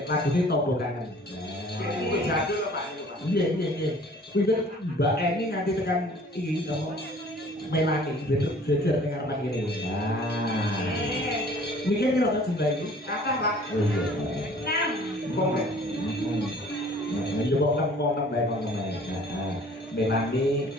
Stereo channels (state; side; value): normal; both; correlation 0.52